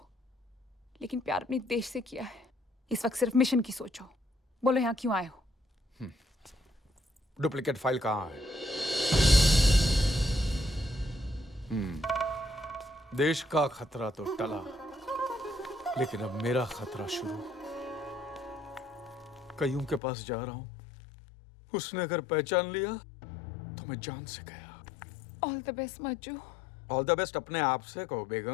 लेकिन प्यार अपने देश से किया है। इस वक्त सिर्फ मिशन की सोचो। बोलो यहाँ क्यों आए हो? डुप्लीकेट फाइल कहाँ है? देश का खतरा तो टला, लेकिन अब मेरा खतरा शुरू। कईयों के पास जा रहा हूं। उसने अगर पहचान लिया तो मैं जान से गया। All the best Majju. All the best अपने आप से कहो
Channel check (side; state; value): right; drops out; at 20.0 s